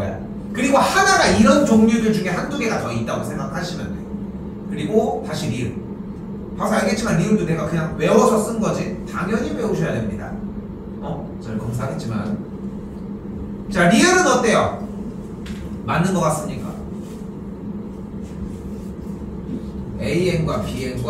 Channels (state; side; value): identical; both; correlation 1.00